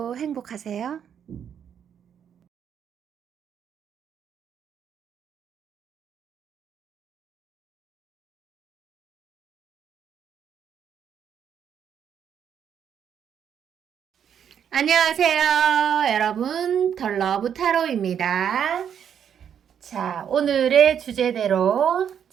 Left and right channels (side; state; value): left; quieter; 8.5 dB